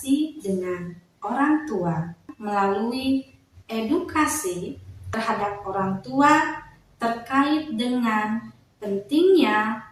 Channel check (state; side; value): identical; both; correlation 1.00